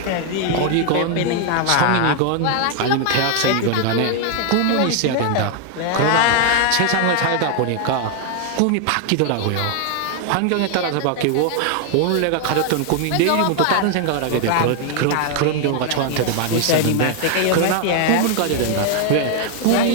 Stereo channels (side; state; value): both; different; correlation 0.00